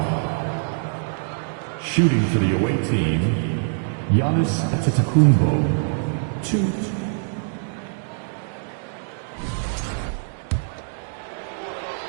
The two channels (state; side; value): silent; left; digital silence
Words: Shooting for the away team, Giannis Antetokounmpo. 2.